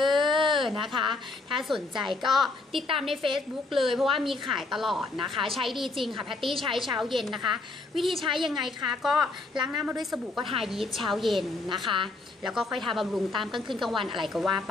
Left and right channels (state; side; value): quieter; right; 3.4 dB